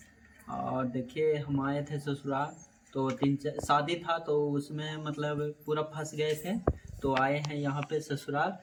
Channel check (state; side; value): identical; both; correlation 1.00